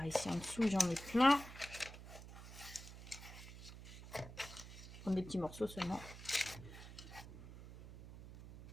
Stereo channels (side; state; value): right; noise; hum, 14 dB below the sound